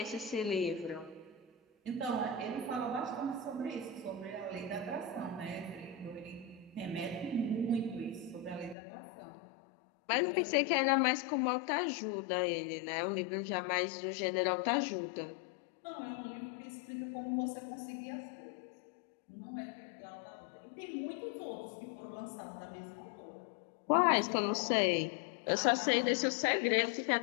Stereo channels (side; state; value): right; drops out; at 8.8 s